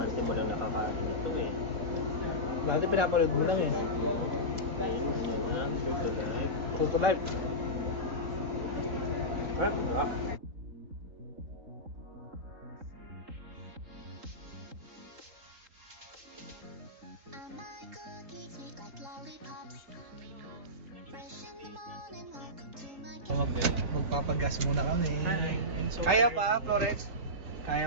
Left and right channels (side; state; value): left; late; 3.7 ms